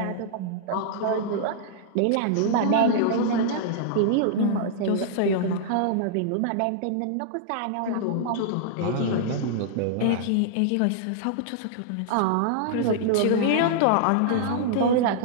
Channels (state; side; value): different; both; correlation -0.01